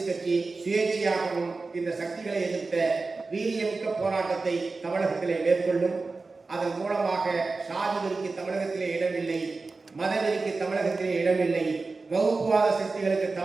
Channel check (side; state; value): left; quieter; 3.9 dB